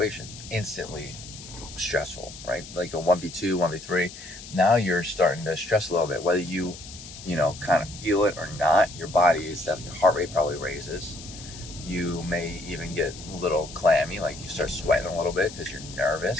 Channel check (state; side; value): noise; left; hiss, 14 dB below the sound